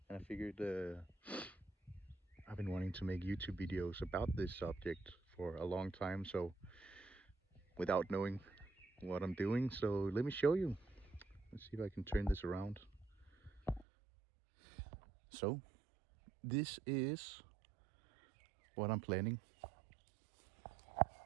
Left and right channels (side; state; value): left; drops out; at 13.9 s